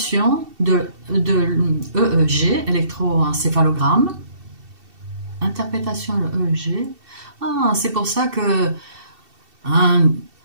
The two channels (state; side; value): late; left; 2.7 ms